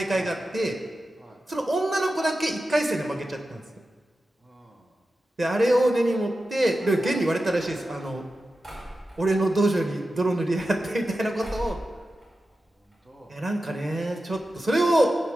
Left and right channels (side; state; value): both; normal; correlation 0.92